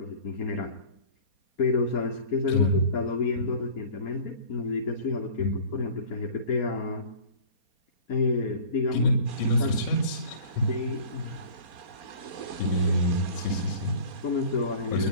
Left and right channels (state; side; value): late; right; 4.3 ms